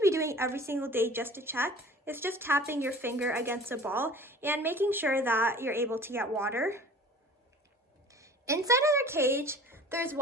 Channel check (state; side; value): normal; both; correlation 0.44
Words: be doing every single day just to check is just tapping your finger against the ball and making sure that you're able to get water. Inside of their cage, there's